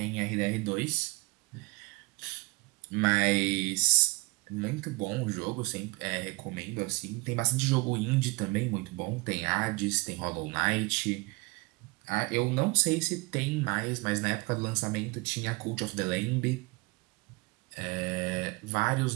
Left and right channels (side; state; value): left; quieter; 25.9 dB